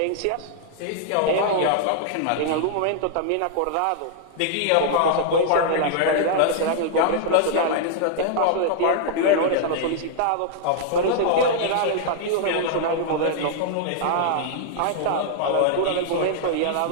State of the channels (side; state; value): both; different; correlation -0.01